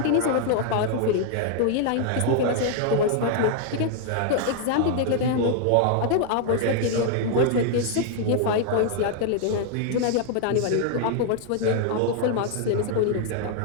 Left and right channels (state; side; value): different; both; correlation 0.00